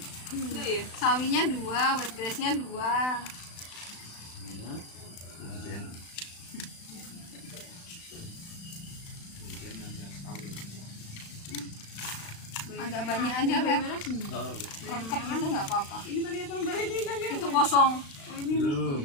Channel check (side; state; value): right; late; 36 ms